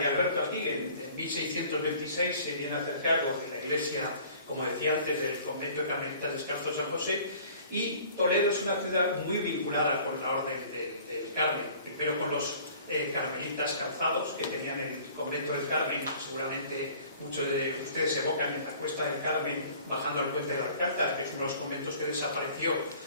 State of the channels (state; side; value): inverted; both; correlation -0.50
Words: Alberto aquí. En 1626 se viene a hacer cargo de la iglesia, como decía antes, del convento de Carmelitas Descalzos San José, y Toledo es una ciudad muy vinculada con la orden del Carmen, primero con los carmelitas calzados que tenían el convento del Carmen, que seguramente muchos de ustedes evocan en la Cuesta del Carmen bajando al puente del Alcázar, que es uno de los conventos que desapareció